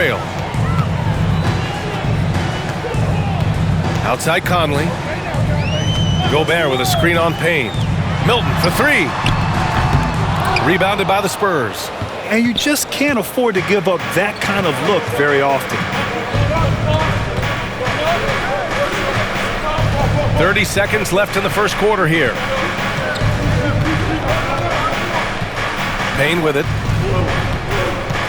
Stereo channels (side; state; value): both; identical; correlation 1.00